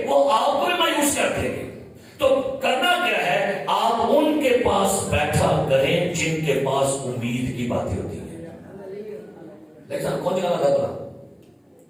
وہ آپ کو مایوس کر دیں گے. تو کرنا کیا ہے؟ آپ ان کے پاس بیٹھا کریں جن کے پاس امید کی باتیں ہوتی ہیں. لیکن کون جگہ لگا بلا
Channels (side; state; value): both; identical; correlation 1.00